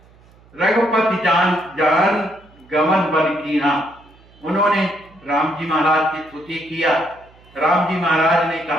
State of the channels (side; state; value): right; noise; hum, 28 dB below the sound